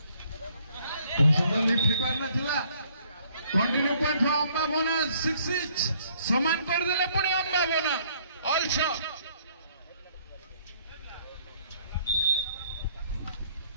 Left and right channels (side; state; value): both; inverted; correlation -0.64